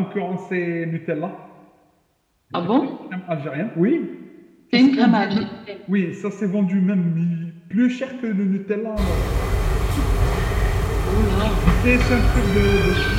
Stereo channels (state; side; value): identical; both; correlation 1.00